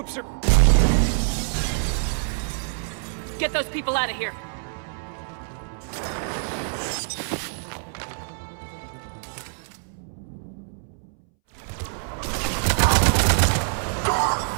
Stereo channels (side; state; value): left; silent; 62 dB below the other